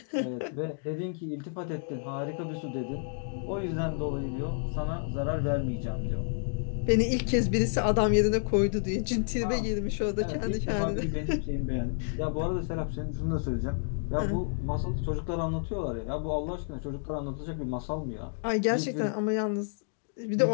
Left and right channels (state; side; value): silent; right; digital silence